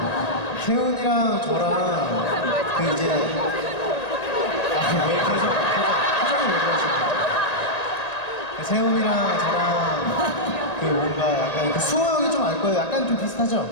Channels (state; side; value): late; right; 1.9 ms